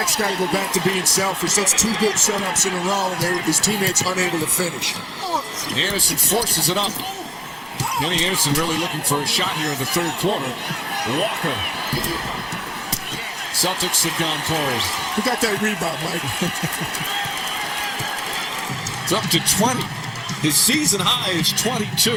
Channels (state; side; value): identical; both; correlation 1.00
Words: got to go back to being selfish. That's 2 good setups in a row, and his teammates unable to finish. Anderson forces it up. Kenny Anderson really looking for a shot here in the third quarter. Walker. Celtics have gone cold. Who got that rebound, Mike? It's up to 20. His season high is